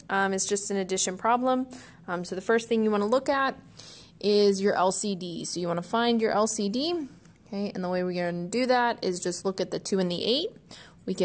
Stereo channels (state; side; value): identical; both; correlation 1.00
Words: is just an addition problem. So the first thing you want to look at is your LCD. So you want to find your LCD. Okay, and the way we're going to do that is just look at the 2 and the 8. We